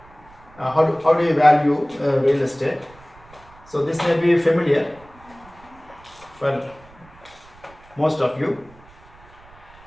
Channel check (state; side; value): noise; right; rumble, 25 dB below the sound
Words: How do you value real estate? So this may be familiar for most of you.